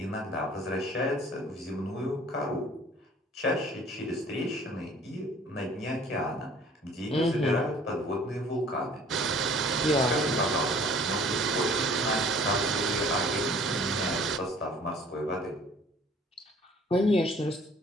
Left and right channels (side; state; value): both; normal; correlation 0.52